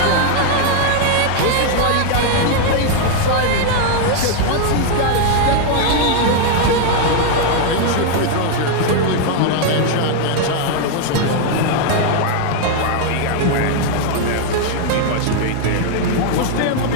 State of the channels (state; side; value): different; both; correlation 0.00